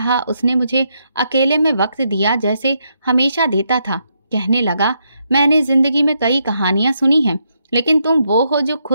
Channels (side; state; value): both; inverted; correlation -0.79